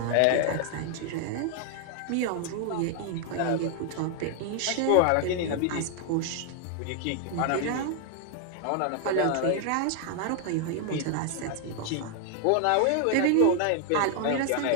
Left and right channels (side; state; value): both; different; correlation 0.00